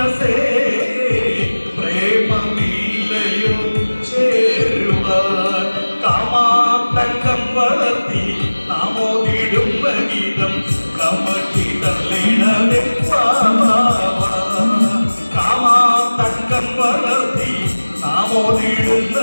പ്രേമമില്ലയോ ചേരുവാൻ കാമാതങ്കം വളർത്തി നാമോദിടുന്ന ഗീതം കമട്ടി തള്ളിടവേ കാമാതങ്കം വളർത്തി നാമോദിടുന്ന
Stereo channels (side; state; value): both; inverted; correlation -1.00